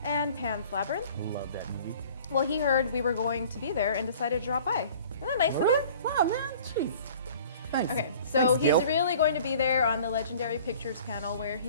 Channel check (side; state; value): both; inverted; correlation -0.48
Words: and Pan's Labyrinth. Love that movie. Well, he heard we were going to be there and decided to drop by. Isn't that nice of him? Wow, man. Jeez. Thanks. Okay, so Thanks, he's really going to be there on the Legendary Pictures panel where